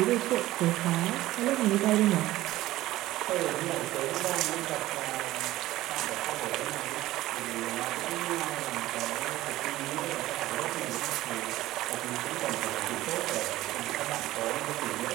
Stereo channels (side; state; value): left; quieter; 16.1 dB